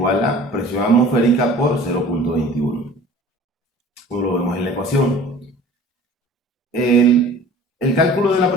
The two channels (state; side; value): normal; both; correlation 0.45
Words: a presión atmosférica por 0.21. Como lo vemos en la ecuación. El cálculo de la